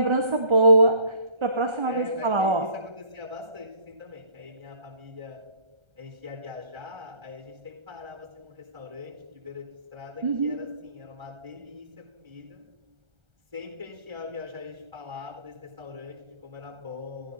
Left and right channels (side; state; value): left; late; 1.3 ms